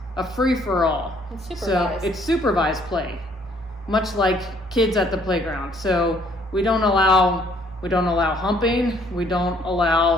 a free-for-all. It's So supervised. it's supervised play, much like kids at the playground. So we don't allow humping. We don't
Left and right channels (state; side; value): normal; both; correlation 0.63